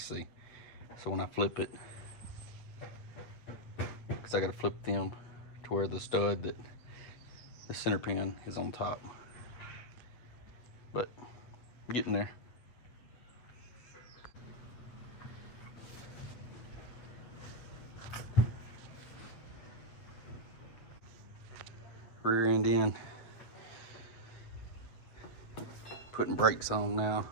see. So when I flip it, because I gotta flip them to where the stud that the center pin is on top. But I'm getting there. rear end in. Putting brakes on now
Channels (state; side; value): late; right; 8.4 ms